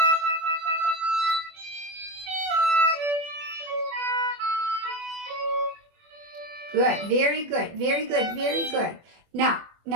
Good. Very good. Very good. Very good. Now,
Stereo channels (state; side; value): late; left; 24 ms